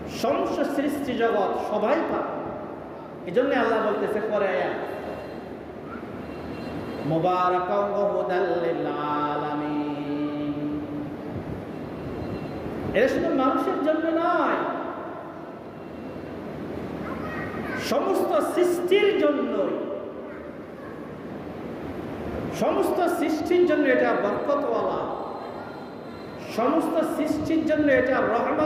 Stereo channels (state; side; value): identical; both; correlation 1.00